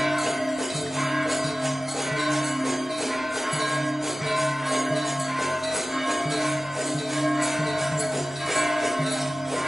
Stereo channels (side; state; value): both; normal; correlation 0.96